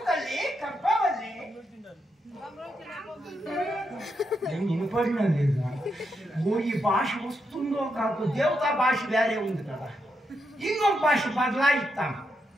తల్లి కప్పవల్లి నేను వినపడినా లేదా ఈ భాష వస్తుందో కాదు దేవతా భాష వేరే ఉంది కదా ఇంకొక భాష బదలాయిస్తాం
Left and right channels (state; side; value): normal; both; correlation 0.82